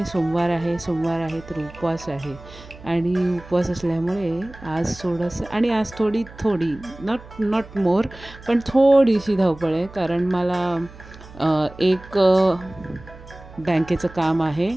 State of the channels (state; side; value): noise; right; hum, 19 dB below the sound